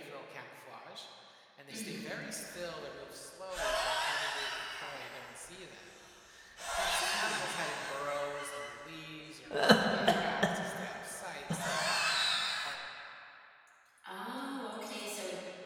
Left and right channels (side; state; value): both; identical; correlation 1.00